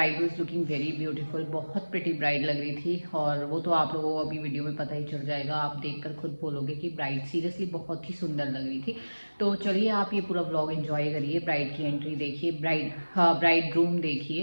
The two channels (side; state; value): both; inverted; correlation -1.00